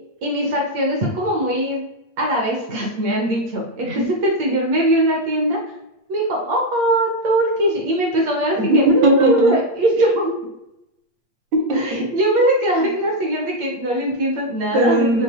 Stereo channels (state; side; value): late; left; 8.5 ms